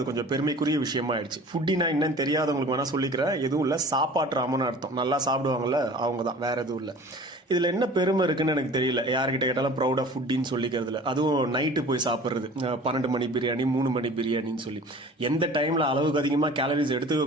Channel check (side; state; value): both; normal; correlation 0.43